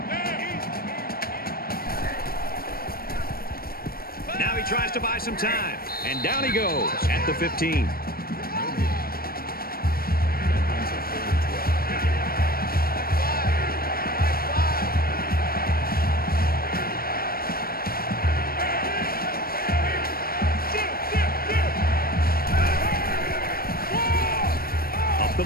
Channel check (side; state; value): right; late; 0.43 ms